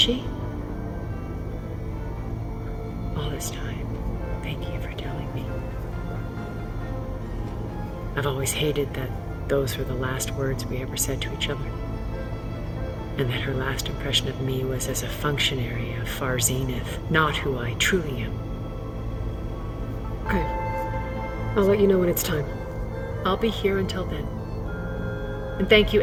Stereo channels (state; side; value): identical; both; correlation 1.00